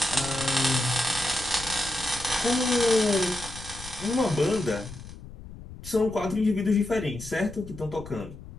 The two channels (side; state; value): left; noise; rumble, 15 dB below the sound